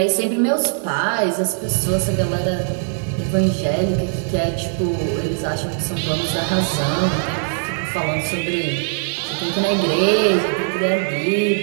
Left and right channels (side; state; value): left; silent; digital silence